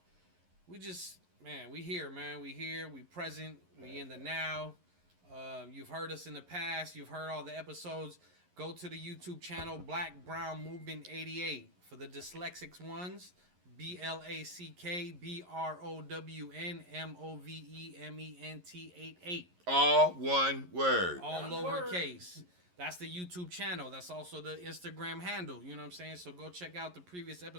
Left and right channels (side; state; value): left; late; 11 ms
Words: we just, man, we here, man. We here, we present, we in the now. You've heard us in the past. You've heard all the episodes. Go to the YouTube channel, Black Brown Movement 88. For the dyslexics ones, BlackBrownMovement 88. All one word. All lowercase. That's the YouTube channel. That's also the Instagram handle. You know what I'm saying? So go check out the previous